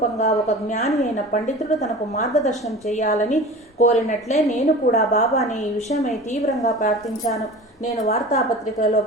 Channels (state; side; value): normal; both; correlation 0.37